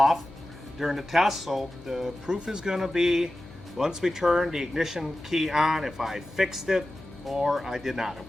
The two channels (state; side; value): noise; left; hum, 20 dB below the sound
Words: during the test, so the proof is going to be once we turn the ignition key on if I fixed it or I did not, if